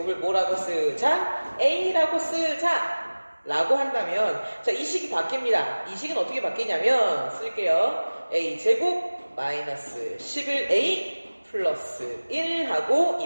뭐라고 쓰자? a라고 쓰자. 라고 한다면 자, 이 식이 바뀝니다. 이 식은 어떻게 바뀌냐면 쓸게요. a제곱 마이너스 11a 플러스 1 하고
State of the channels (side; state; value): both; inverted; correlation -1.00